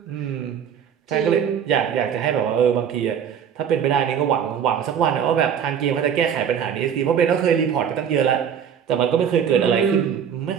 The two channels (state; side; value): quieter; left; 8.1 dB